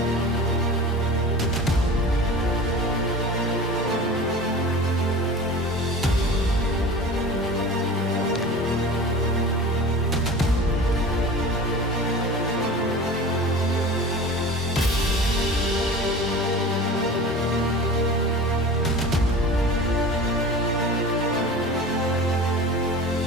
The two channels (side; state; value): both; normal; correlation 0.37